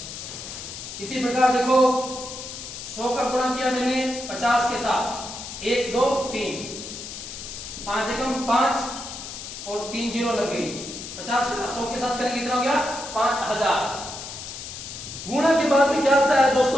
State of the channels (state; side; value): noise; left; hiss, 10 dB below the sound